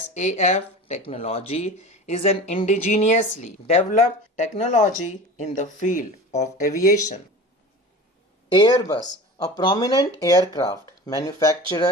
technology is an indigenously developed technology in the field of aviation. Airbus, a prominent aircraft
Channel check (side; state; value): both; normal; correlation 0.35